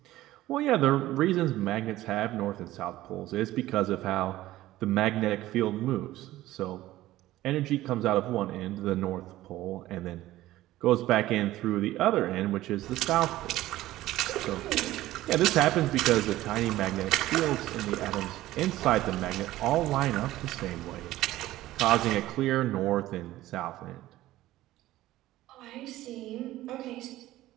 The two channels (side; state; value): left; quieter; 15.7 dB